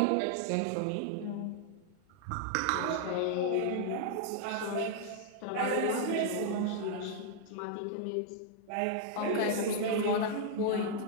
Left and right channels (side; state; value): both; different; correlation 0.00